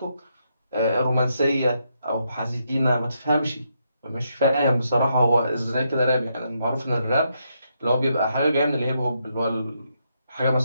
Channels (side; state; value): both; inverted; correlation -0.79